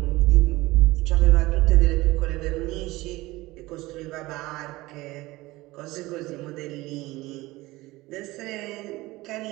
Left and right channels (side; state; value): left; quieter; 19.8 dB